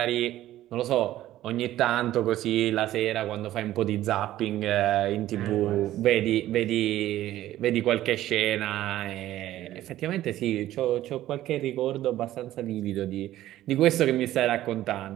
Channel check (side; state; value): left; quieter; 14.1 dB